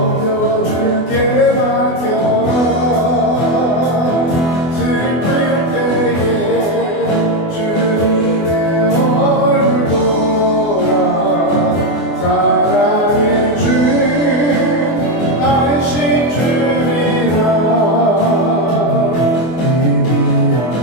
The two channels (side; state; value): right; late; 24 ms